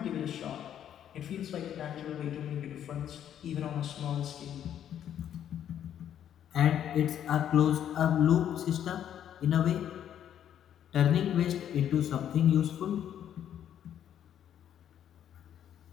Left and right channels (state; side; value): quieter; right; 10.1 dB